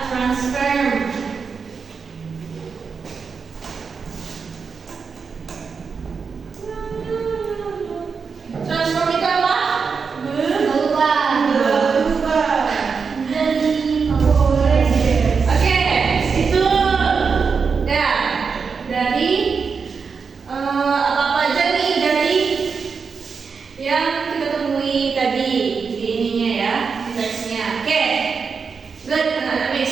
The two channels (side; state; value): left; quieter; 5.5 dB